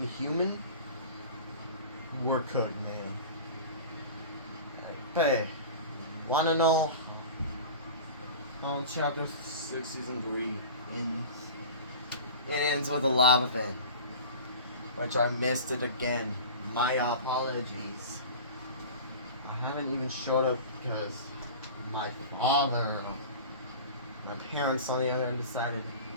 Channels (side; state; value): both; inverted; correlation -0.35